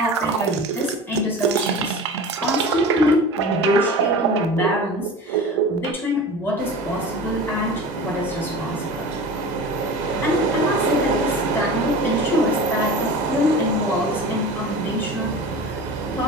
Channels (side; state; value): both; normal; correlation 0.34